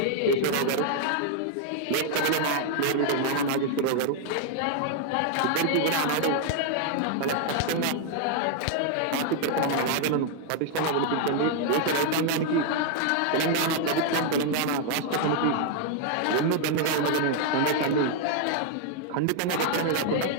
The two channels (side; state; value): both; different; correlation 0.00